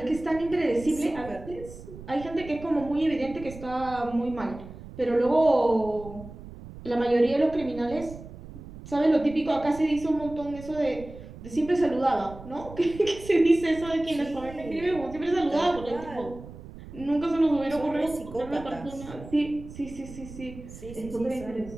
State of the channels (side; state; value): right; noise; rumble, 15 dB below the sound